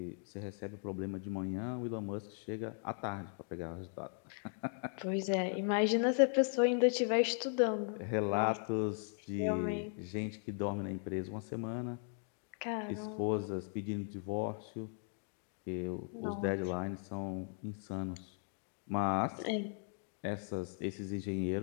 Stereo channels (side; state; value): right; silent; 53 dB below the other